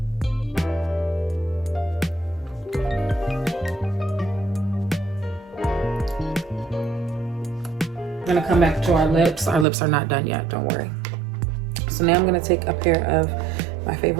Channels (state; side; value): drops out; left; at 9.7 s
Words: I'm gonna come back to our lips. Our lips are not done yet, don't worry. So now I'm gonna take a pair of my